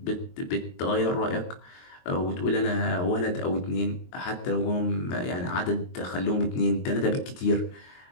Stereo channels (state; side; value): late; right; 23 ms